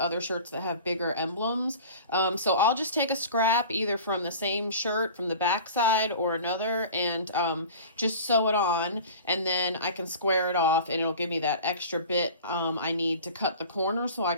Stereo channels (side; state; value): both; inverted; correlation -0.40